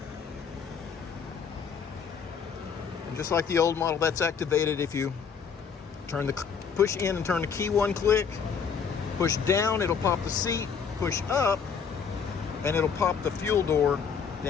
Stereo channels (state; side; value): quieter; right; 6.4 dB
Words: And just like the old model, that's activated if you push in and turn the key one click. Push down, it'll pop the seat. Push up, and it'll pop the fuel door